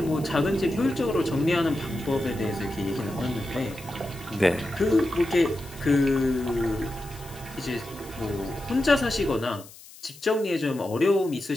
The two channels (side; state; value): left; noise; hiss, 20 dB below the sound